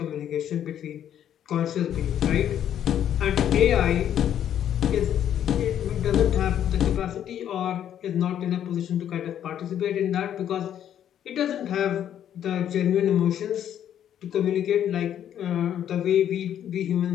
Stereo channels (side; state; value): right; quieter; 10.2 dB